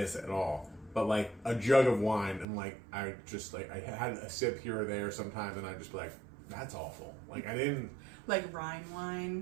at all, but like a jug of wine, and like I had a sip here or there sometimes, and I'd just be like, that's awful. Like I didn't like Rhine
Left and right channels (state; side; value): drops out; left; at 2.5 s